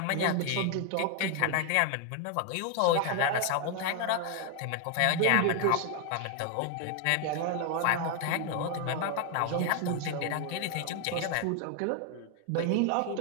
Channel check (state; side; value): different; both; correlation 0.01